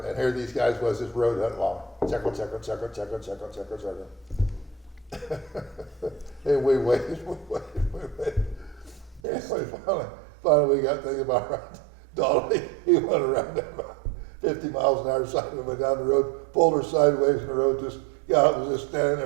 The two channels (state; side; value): drops out; left; at 9.2 s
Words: and here these guys was just road hunting along. Check. And we waited. And finally we got thinking about right. Donnie, he went around that about 50 miles an hour side and went down the road, pulled her sideways in the road, just got out and was just standing